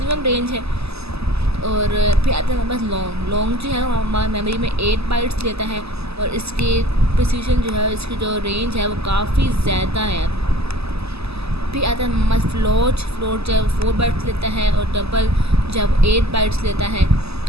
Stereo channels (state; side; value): late; left; 0.79 ms